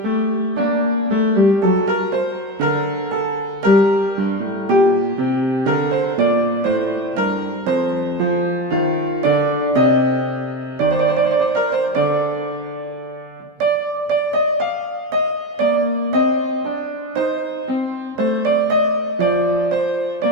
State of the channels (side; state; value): left; late; 15 ms